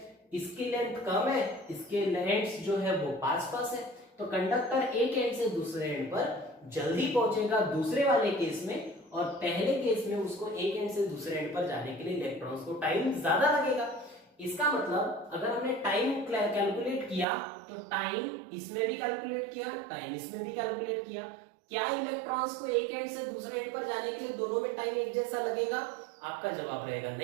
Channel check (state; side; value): drops out; left; at 17.2 s